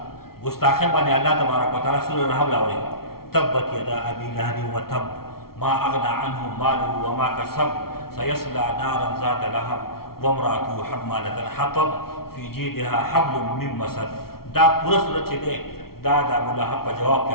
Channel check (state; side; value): late; right; 0.94 ms